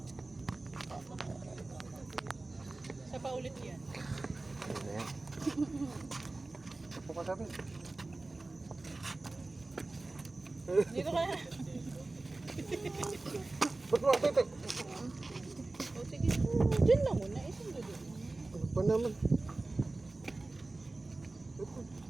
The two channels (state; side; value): quieter; left; 3.2 dB